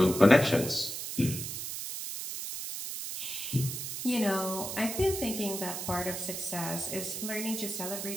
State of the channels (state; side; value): noise; right; hiss, 5 dB below the sound